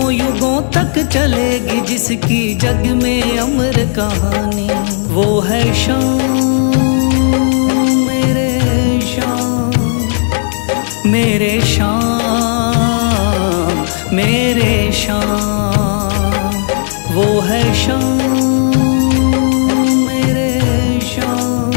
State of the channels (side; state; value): right; silent; digital silence